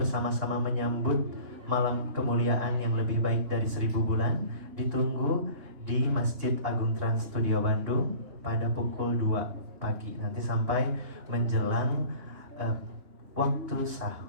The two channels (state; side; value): late; left; 3.2 ms